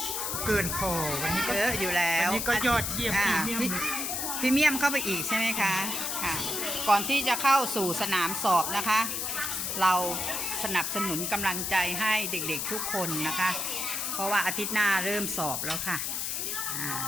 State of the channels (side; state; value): left; noise; hiss, 1 dB below the sound